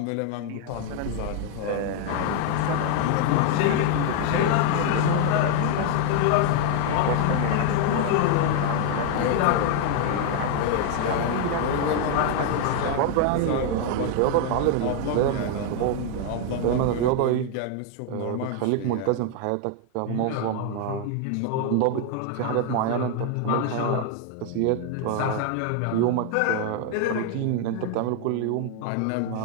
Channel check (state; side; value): different; both; correlation 0.00